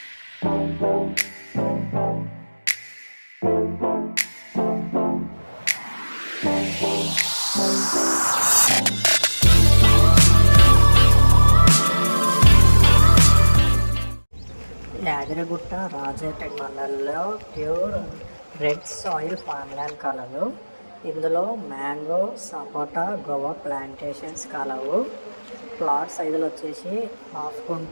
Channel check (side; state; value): both; inverted; correlation -1.00